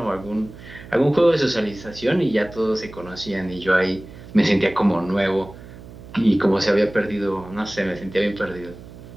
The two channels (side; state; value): right; noise; hum, 17 dB below the sound